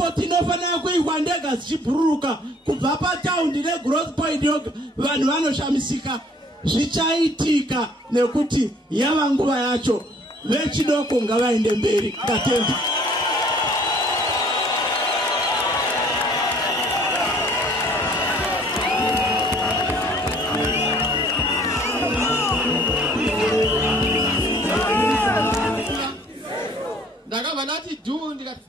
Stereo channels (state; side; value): normal; both; correlation 0.56